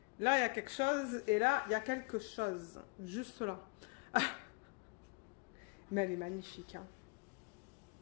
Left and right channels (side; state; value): right; quieter; 31.4 dB